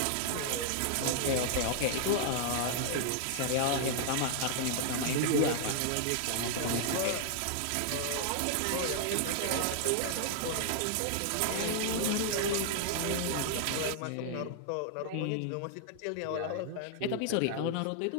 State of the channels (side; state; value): both; different; correlation 0.00